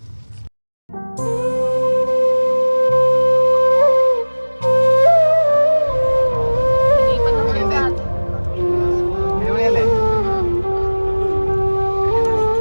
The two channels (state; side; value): inverted; both; correlation -1.00